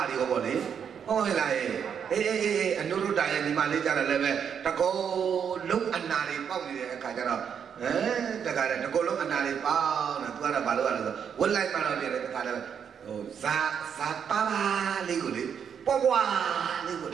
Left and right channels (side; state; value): left; quieter; 7.6 dB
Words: းတွေကပေါ့လေဟုတ်လားအနုရုဒ္ဒရဲ့ဒီမှာလေးကြတယ်လည်းပဲတကောလုံးအနာတွေပေါက်နေတဲ့အခါကျတော့တခါတည်းတကောလုံးအနာတွေပေါက်နေသူကတော့ဘာလို့ရလဲဆိုဝက်လိုက်မှတော့ပြတယ်တခါတည်းဟိုဇာပါလေးကိုလေပွားပွားလေးကို